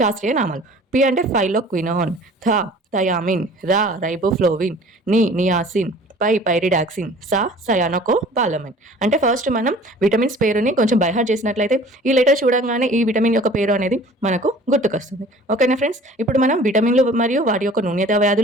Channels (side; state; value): both; normal; correlation 0.47